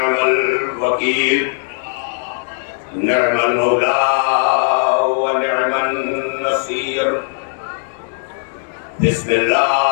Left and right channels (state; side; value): silent; right; digital silence